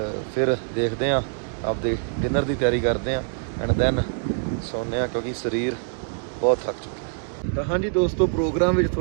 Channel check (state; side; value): silent; left; digital silence